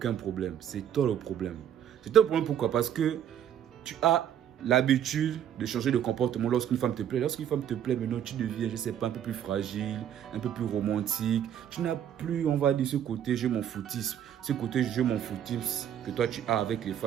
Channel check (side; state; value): left; quieter; 9.8 dB